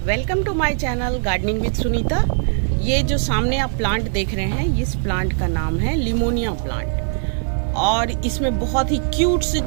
Welcome to my channel gardening with Sunita. ये जो सामने आप प्लांट देख रहे हैं, इस प्लांट का नाम है लिमोनिया प्लांट और इसमें बहुत ही क्यूट से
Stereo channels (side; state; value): left; silent; digital silence